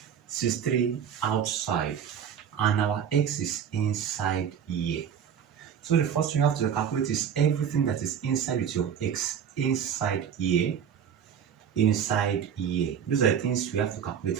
63 outside, and our x is inside here. So the first thing you have to calculate is everything that is inside with your x inside here, inside here. Those are the things we have to calculate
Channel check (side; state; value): left; quieter; 8.3 dB